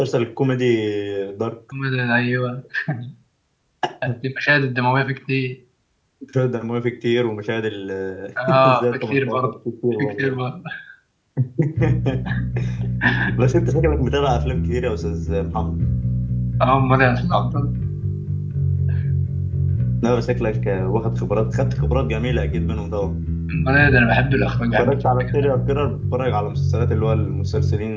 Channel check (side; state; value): both; identical; correlation 1.00